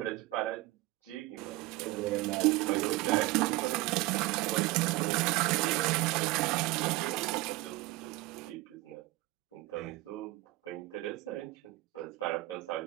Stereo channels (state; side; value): quieter; left; 19.9 dB